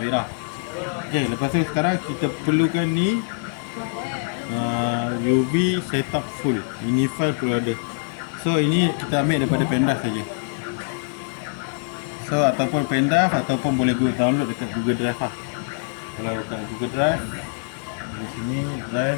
Wira. Okay, lepas tu sekarang kita perlukan ni UV setup full. Ini file perlu ada. So ini kita ambil daripada pendrive saja. So ataupun pendrive ataupun boleh download dekat Google Drive lah. Kalau dekat Google Drive, di sini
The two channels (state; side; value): silent; right; digital silence